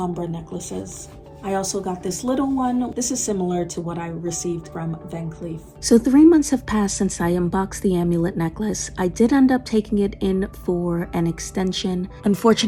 necklaces. I also got this little one. This is similar to what I received from Van Cleef. So 3 months have passed since I unboxed the amulet necklace. I did end up taking it in for an extension.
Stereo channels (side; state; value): both; identical; correlation 1.00